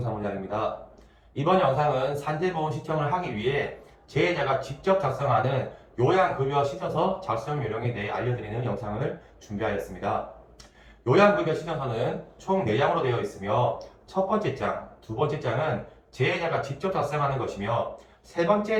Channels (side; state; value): both; identical; correlation 1.00